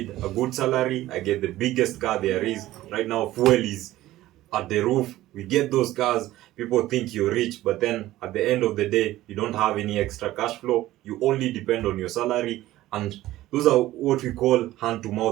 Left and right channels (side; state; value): left; quieter; 15.7 dB